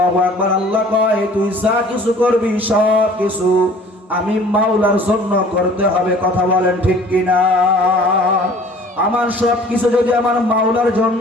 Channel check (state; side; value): normal; both; correlation 0.50